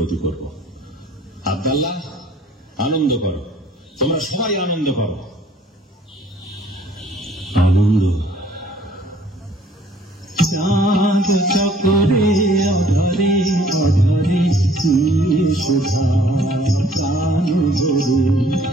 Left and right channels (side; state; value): both; normal; correlation 0.57